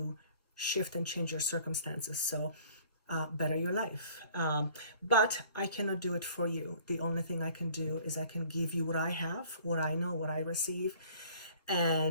shift and change your circumstances. So better your life. But I cannot do it for you. The only thing I can do is I can give you what I have, what I know, what I receive,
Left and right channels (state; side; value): inverted; both; correlation -0.54